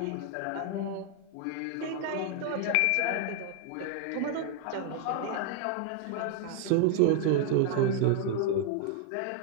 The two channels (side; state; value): both; different; correlation 0.00